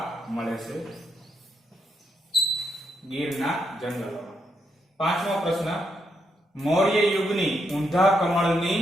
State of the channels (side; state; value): both; normal; correlation 0.79